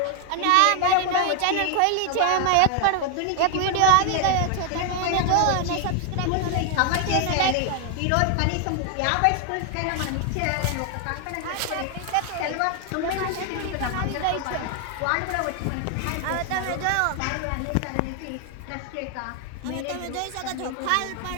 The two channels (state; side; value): different; both; correlation 0.00